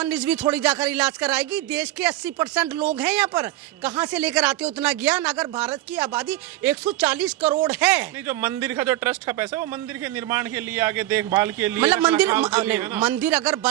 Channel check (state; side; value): quieter; left; 15.7 dB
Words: रिजवी थोड़ी जाकर इलाज कराएगी। देश के 80% लोग हैं यहाँ पर, कहाँ से लेकर आते हो उतना ज्ञान? अगर भारत की आबादी 140 करोड़ है। नहीं, जो मंदिर का जो ट्रस्ट का पैसा है वो मंदिर के निर्माण के लिए, आगे देखभाल के लिए, मतलब मंदिर मंदिर अगर